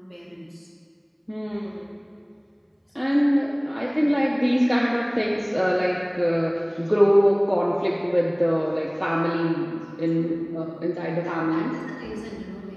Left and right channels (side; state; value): both; identical; correlation 1.00